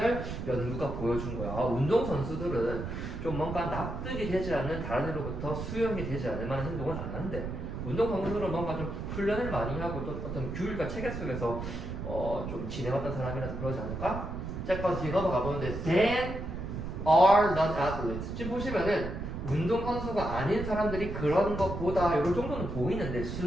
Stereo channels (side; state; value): right; noise; rumble, 6 dB below the sound